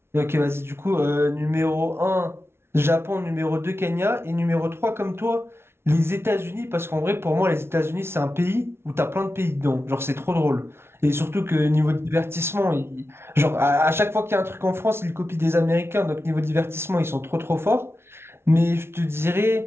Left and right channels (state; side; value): late; left; 0.12 ms